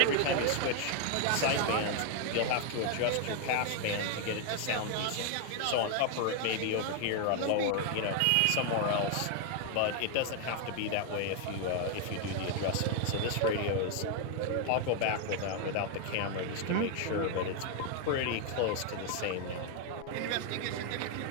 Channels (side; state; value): both; different; correlation 0.01